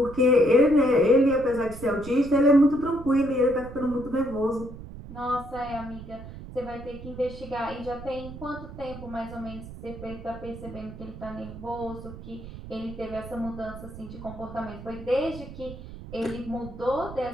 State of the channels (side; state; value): right; noise; rumble, 13 dB below the sound